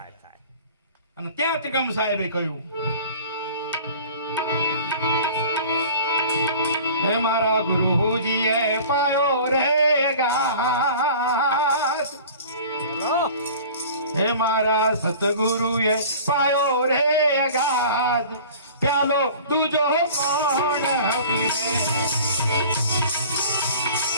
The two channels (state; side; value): inverted; both; correlation -0.43